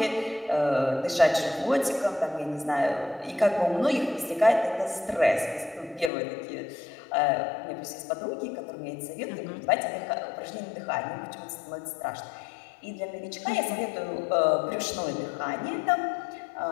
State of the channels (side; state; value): right; drops out; at 6.1 s